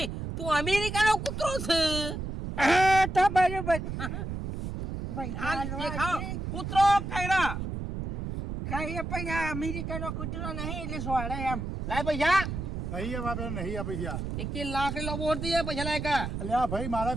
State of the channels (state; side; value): noise; right; rumble, 5 dB below the sound